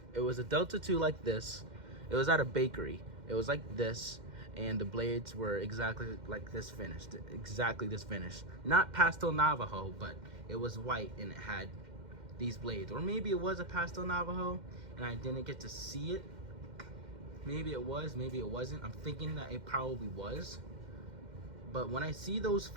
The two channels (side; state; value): left; late; 2.1 ms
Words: It was a Delta 2 like this. It was at a bakery. It was like this, and the blades were exactly like this finished. Exactly this finish. Not Pastel Navajo, but it was white and it had these blades. Or maybe it was a Pastel Navajo and I didn't get to see it. Maybe it was, maybe it wasn't. I'm thinking that it probably was. But when I see those